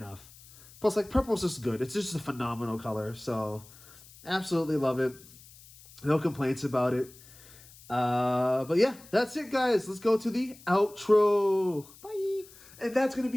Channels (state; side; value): noise; left; hiss, 22 dB below the sound